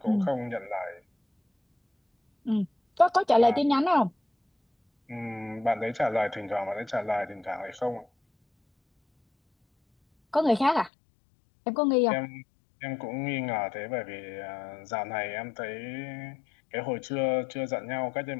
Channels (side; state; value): right; drops out; at 10.9 s